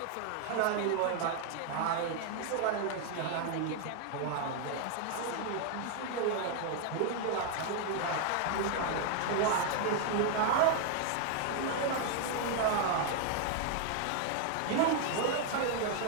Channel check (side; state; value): both; different; correlation 0.00